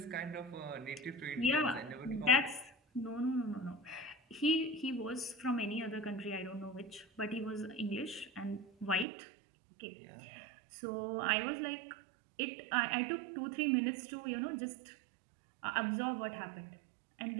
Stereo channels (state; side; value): drops out; left; at 9.1 s